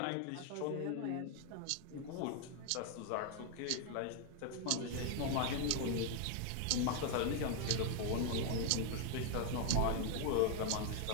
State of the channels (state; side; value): different; both; correlation 0.01